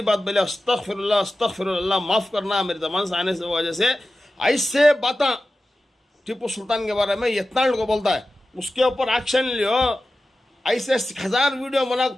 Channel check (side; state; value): both; normal; correlation 0.94